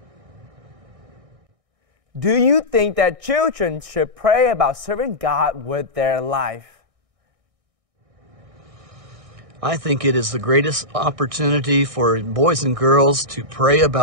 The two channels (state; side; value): late; left; 1.6 ms